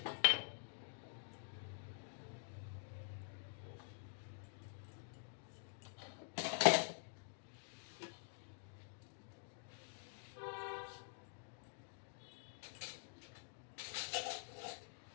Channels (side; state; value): right; silent; digital silence